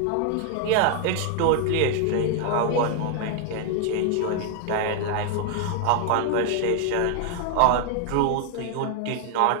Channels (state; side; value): different; both; correlation 0.00